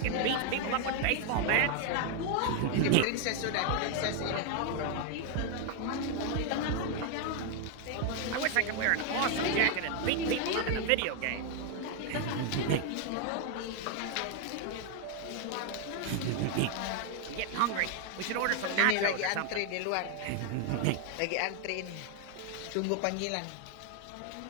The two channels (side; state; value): both; different; correlation 0.01